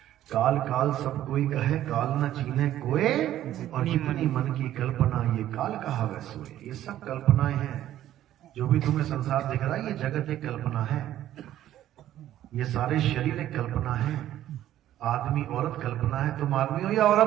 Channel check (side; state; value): left; quieter; 12.7 dB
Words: काल काल सब कोई कहे, काल न चीन्हे कोई, और जितनी मन की कल्पना ये काल कहा वै सोए। ये सब कल्पनाएं हैं। जो भी तुम्हें संसार दिख रहा है ये जगत एक कल्पना है, ये सारे शरीर एक कल्पना है। आदमी औरत कल्पना है। तुम आदमी हो या